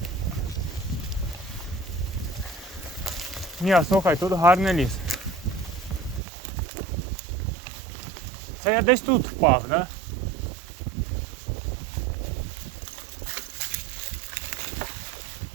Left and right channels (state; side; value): drops out; left; at 6.2 s